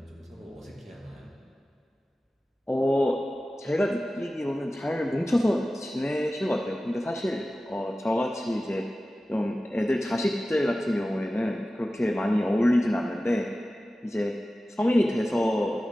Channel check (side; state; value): both; normal; correlation 0.96